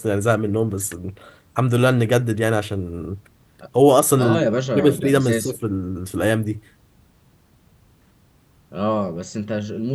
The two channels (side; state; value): both; identical; correlation 1.00